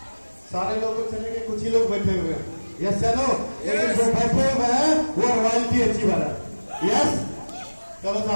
सारे लोग तो चलेंगे, कुछ ही लोग बैठे हुए हैं। यस चलो, लेकिन जो बैठे हुए हैं वो रॉयल्टी अचीवर है। यस चलो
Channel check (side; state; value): both; inverted; correlation -1.00